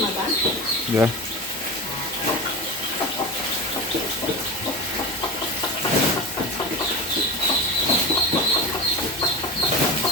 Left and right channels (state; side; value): normal; both; correlation 0.26